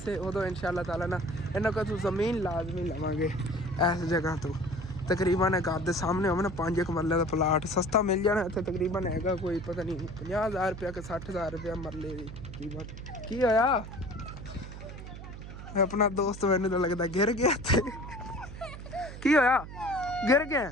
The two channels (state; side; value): noise; right; hum, 11 dB below the sound